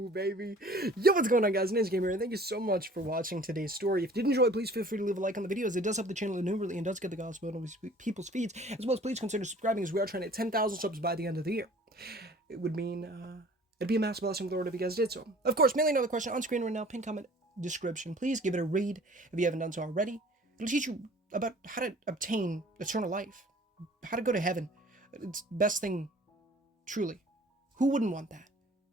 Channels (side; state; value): both; normal; correlation 0.50